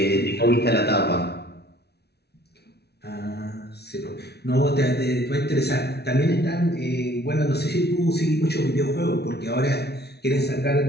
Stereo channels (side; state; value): right; late; 0.48 ms